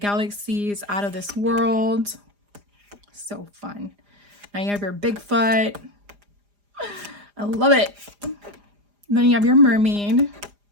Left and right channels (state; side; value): late; left; 4.9 ms